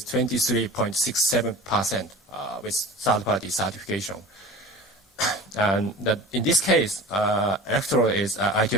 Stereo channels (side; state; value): both; normal; correlation 0.38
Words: 23.67% with third-party certification. And in this case, electrode is